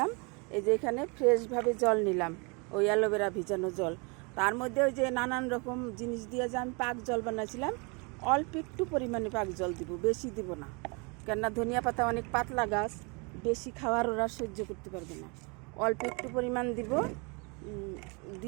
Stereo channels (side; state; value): left; quieter; 31.4 dB